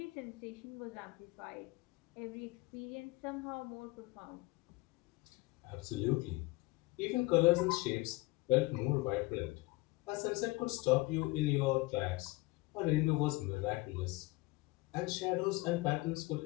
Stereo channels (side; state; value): right; quieter; 21.9 dB